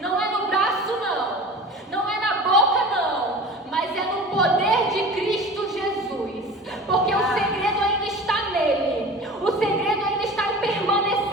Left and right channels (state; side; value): normal; both; correlation 0.37